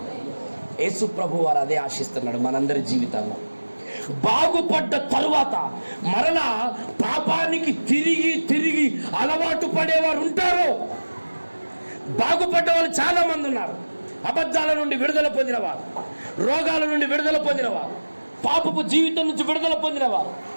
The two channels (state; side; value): inverted; both; correlation -1.00